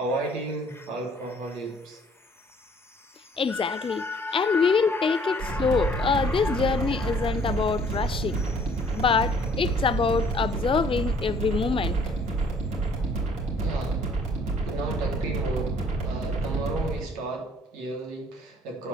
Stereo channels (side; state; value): both; normal; correlation 0.58